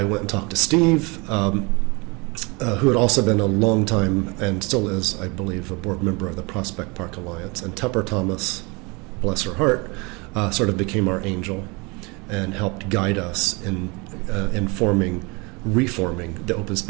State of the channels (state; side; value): quieter; left; 28.1 dB